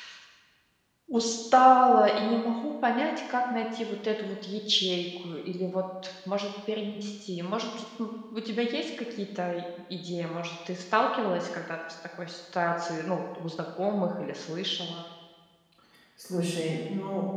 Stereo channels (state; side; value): identical; both; correlation 1.00